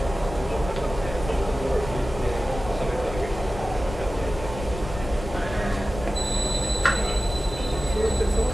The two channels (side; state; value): left; noise; rumble, 10 dB below the sound